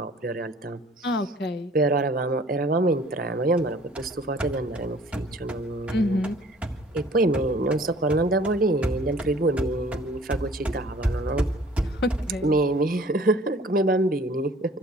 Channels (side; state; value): both; normal; correlation 0.52